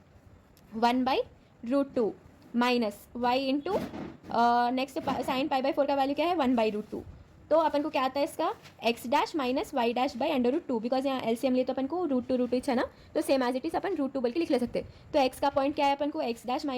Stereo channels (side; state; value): both; identical; correlation 1.00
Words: 1/√2 minus y into next sine π/4 का वैल्यू क्या है, 1/√2 तो अपन को क्या आता है इसका x dash minus y dash by under root two, because यहाँ एलसीएम लिए तो अपन को रूट टू है ना, तो सेम एज इट इज अपन रूट टू बोल के लिख ले सकते हैं। तो एक्स का पॉइंट क्या है अपन को x dash